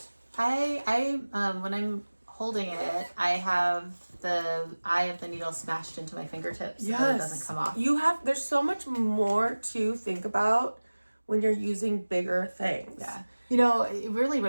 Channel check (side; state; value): both; inverted; correlation -1.00